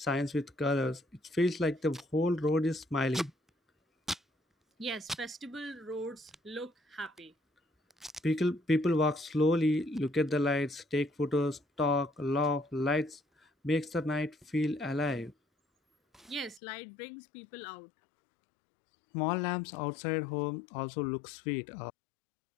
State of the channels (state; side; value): drops out; right; at 16.6 s